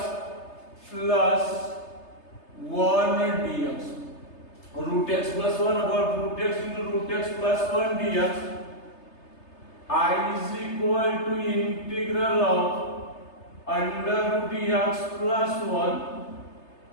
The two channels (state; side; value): late; right; 3.3 ms